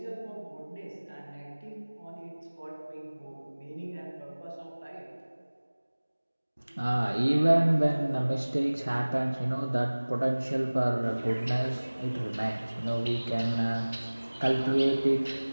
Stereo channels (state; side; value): inverted; both; correlation -1.00